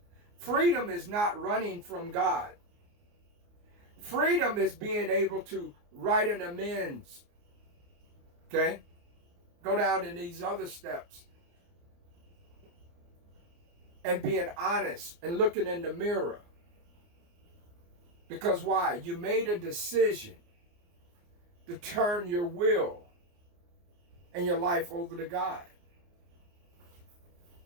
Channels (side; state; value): left; late; 29 ms